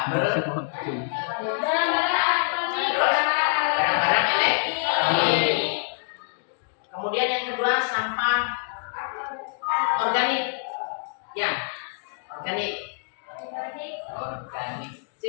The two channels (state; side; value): silent; right; digital silence